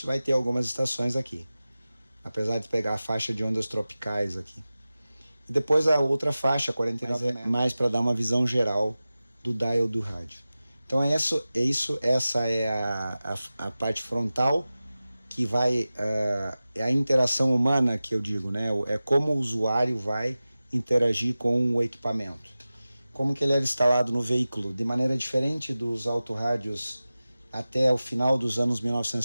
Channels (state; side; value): inverted; both; correlation -0.96